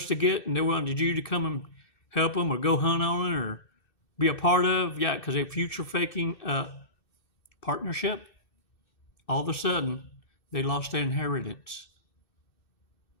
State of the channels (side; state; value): right; late; 2.6 ms